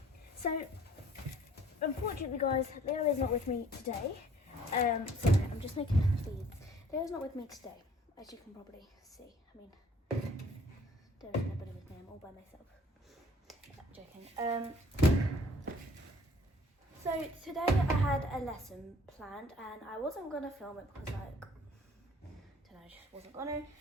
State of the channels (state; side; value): normal; both; correlation 0.56